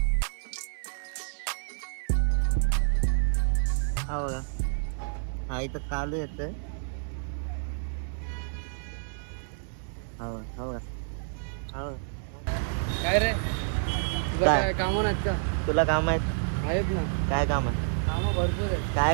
हा बघा, हा इथं कालू येतोय. हा बघा. काय रे, तुझं काय? काय काम नाहीत का? तुला काम आहेत? आहेत ना, काय काम आहे? कामं भरपूर आहेत.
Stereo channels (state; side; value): silent; left; 59 dB below the other